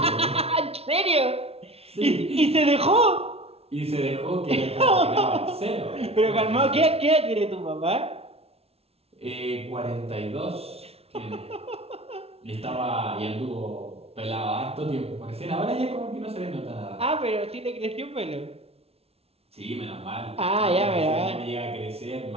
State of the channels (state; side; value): late; left; 0.29 ms